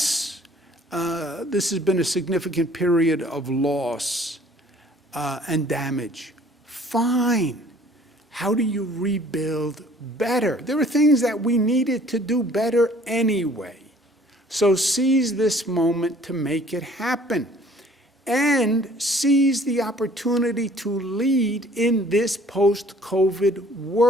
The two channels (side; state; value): both; normal; correlation 0.55